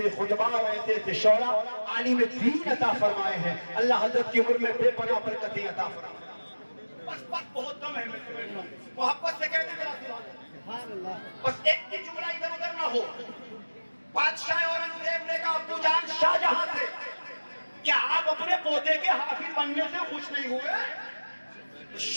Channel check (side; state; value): both; inverted; correlation -1.00